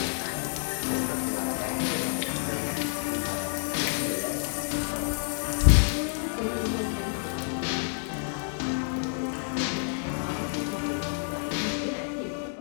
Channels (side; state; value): right; silent; 59 dB below the other